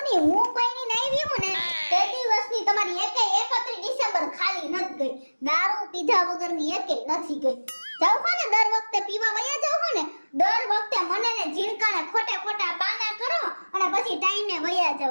હું કોઈની નહીં વીવું ને તે દિવસની તમારી 31 ડિસેમ્બર ખાલી નથી ગઈ. દારૂ પીધા વગરની એકેય નથી ગઈ. જાવ હો ને દર વખતે પીવા વયા જાવ હો ને દર વખતે મને ને ઝીણકાને ખોટા બાના કરો અને પછી ટાઈમે વયા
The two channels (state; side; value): inverted; both; correlation -1.00